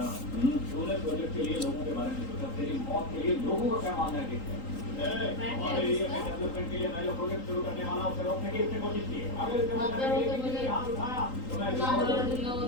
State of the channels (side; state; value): right; late; 3.8 ms